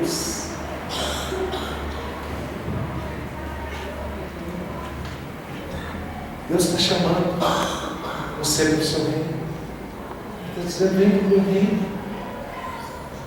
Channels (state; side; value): identical; both; correlation 1.00